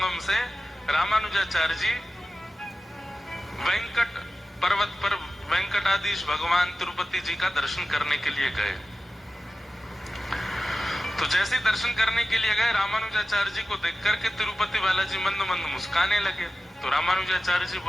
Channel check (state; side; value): normal; both; correlation 0.95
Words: से रामानुजाचार्य जी वेंकट पर्वत पर वेंकटाधीश भगवान तिरुपति जी का दर्शन करने के लिए गए। तो जैसे दर्शन करने के लिए गए, रामानुजाचार्य जी को देख करके तिरुपति बालाजी मंद मंद मुस्काने लगे। तो रामानुजाचार्य जी